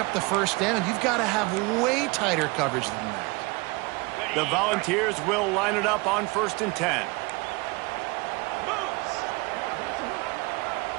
the first down. You've got to have way tighter coverage than that. The Volunteers will line it up on 1st and 10.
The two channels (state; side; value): quieter; left; 26.1 dB